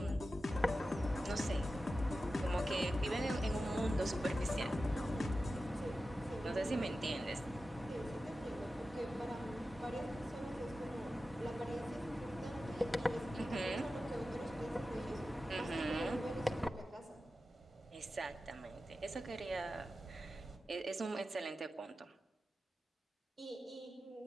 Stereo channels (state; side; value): normal; both; correlation 0.93